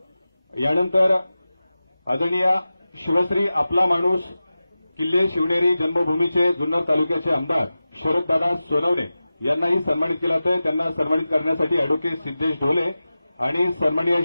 यानंतर आदरणीय शिवश्री आपला माणूस किल्ले शिवनेरी जन्मभूमीचे जुन्नर तालुक्याचे आमदार शरददादा सोनवणे यांनाही सन्मानित केलं जातंय. त्यांना सन्मानित करण्यासाठी अॅडव्होकेट सिद्धेश ढोले आणि सन्माननीय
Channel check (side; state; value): both; inverted; correlation -0.95